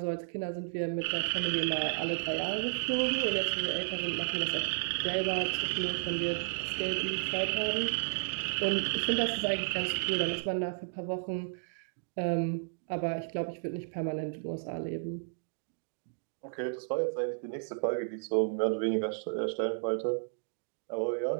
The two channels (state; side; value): silent; left; digital silence